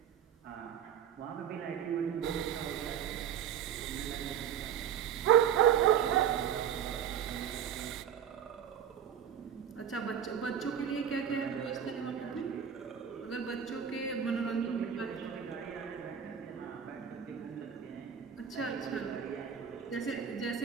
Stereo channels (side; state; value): left; quieter; 8.8 dB